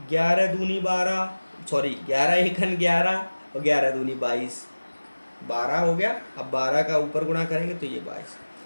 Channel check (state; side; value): inverted; both; correlation -1.00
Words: 11 दूनी 12, सॉरी 11 एकन 11 और 11 दूनी 22, 12 हो गया। अब 12 का ऊपर गुणा करेंगे तो ये 22।